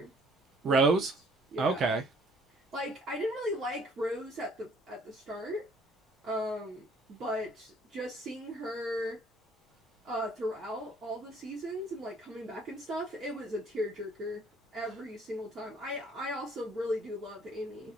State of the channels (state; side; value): normal; both; correlation 0.59